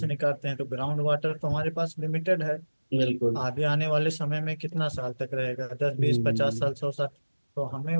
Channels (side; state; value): both; inverted; correlation -1.00